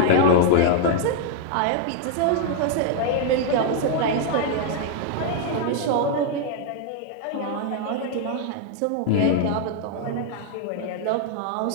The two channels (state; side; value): different; both; correlation -0.01